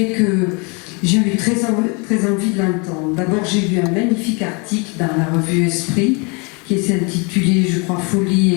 que j'ai eu très envie de l'entendre. D'abord, j'ai lu un magnifique article dans la revue Esprit qui s'est intitulé, je crois, Folie et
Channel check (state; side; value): quieter; right; 31.8 dB